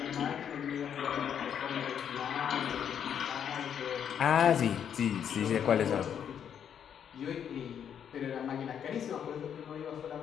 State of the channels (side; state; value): right; quieter; 8.6 dB